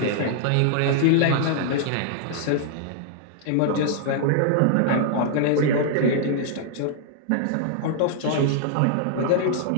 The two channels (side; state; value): both; different; correlation -0.01